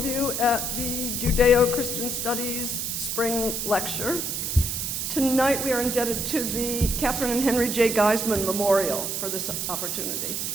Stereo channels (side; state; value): right; noise; hiss, 2 dB below the sound